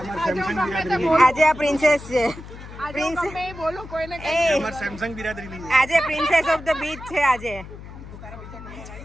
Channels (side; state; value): left; noise; hum, 14 dB below the sound